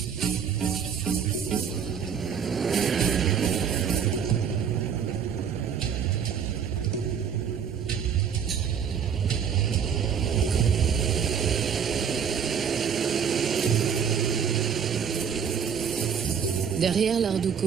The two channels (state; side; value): quieter; left; 7.4 dB